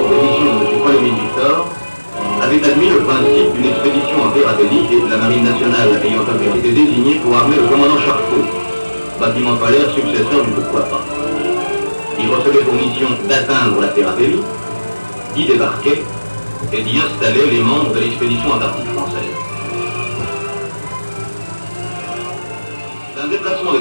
de M. Paul-Émile Victor, avait admis le principe d'une expédition en terre Adélie et la marine nationale ayant été désignée pour armer le commandant Charcot, bâtiment polaire successeur du Pourquoi pas. Il recevait pour mission d'atteindre la terre Adélie, d'y débarquer et d'y installer les membres de l'expédition antarctique française. D'un déplacement de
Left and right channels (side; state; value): both; inverted; correlation -1.00